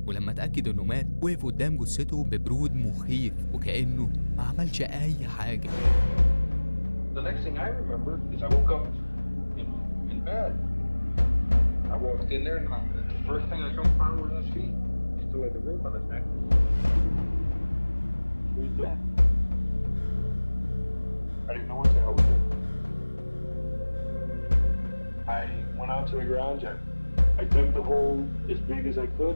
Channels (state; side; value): inverted; both; correlation -1.00